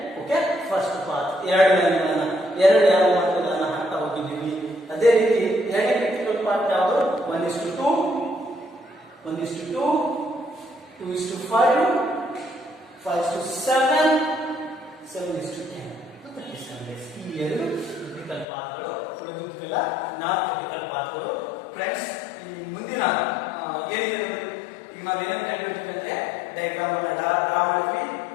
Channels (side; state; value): right; drops out; at 18.4 s